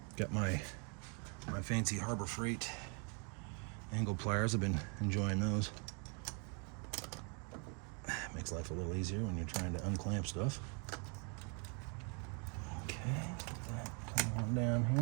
Got my fancy Harbor Freight angle pliers. I've been enjoying those. Makes life a little easier when you're trying to unclamp stuff. Okay, get that coming on down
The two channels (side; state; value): left; quieter; 36.3 dB